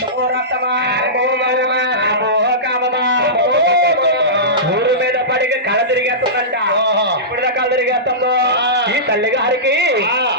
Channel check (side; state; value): both; normal; correlation -0.19